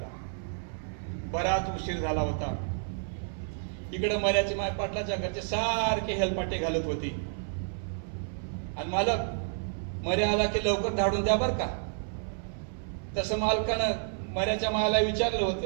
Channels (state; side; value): silent; left; 58 dB below the other